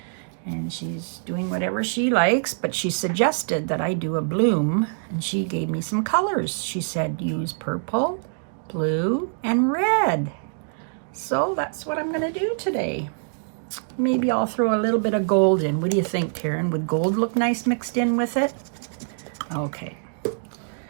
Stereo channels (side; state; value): left; silent; digital silence